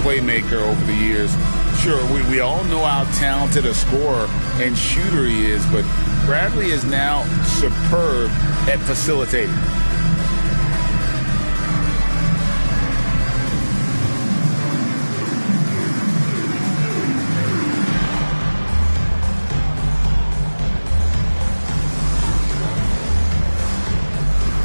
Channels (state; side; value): inverted; both; correlation -1.00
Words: playmaker over the years. Sure, we all know how talented a scorer and shooter he is, but Bradley is now superb at facilitating.